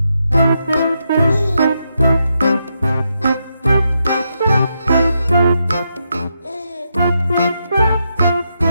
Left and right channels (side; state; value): both; inverted; correlation -0.83